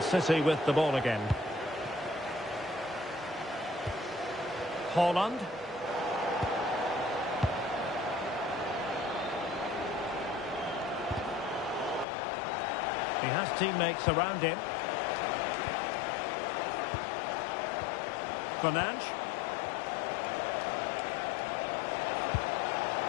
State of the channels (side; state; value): right; drops out; at 12.1 s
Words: City with the ball again. Haaland. He has teammates around him. Fernandes.